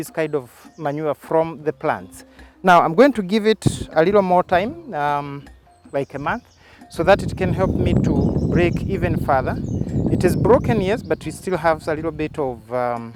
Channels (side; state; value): both; identical; correlation 1.00